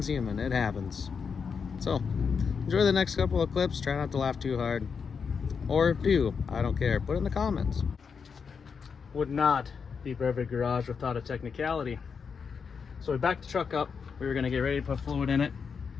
human, it happens. So, enjoy the next couple of clips, try not to laugh too hard. Or do, I don't care, put it in the comments. Would not be Brevard Garage without a technicality. So we backed the truck up, we were gonna get ready to put fluid in it,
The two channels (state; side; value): quieter; right; 5.9 dB